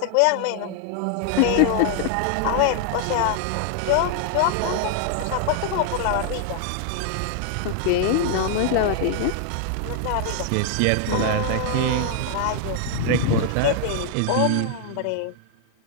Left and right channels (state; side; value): different; both; correlation 0.00